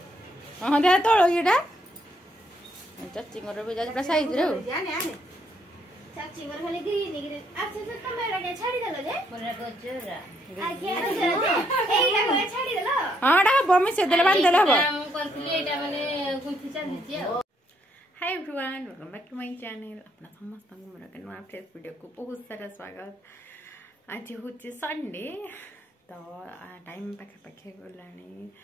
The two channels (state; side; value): normal; both; correlation 0.72